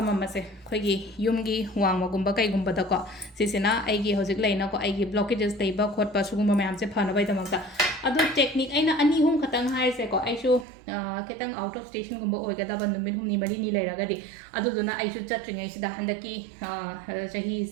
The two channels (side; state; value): left; drops out; at 10.7 s